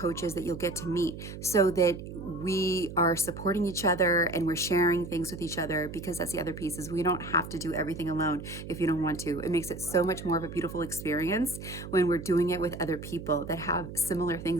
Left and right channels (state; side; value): noise; right; hum, 10 dB below the sound